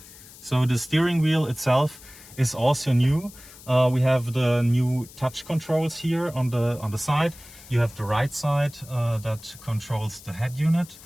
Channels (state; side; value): noise; left; hiss, 20 dB below the sound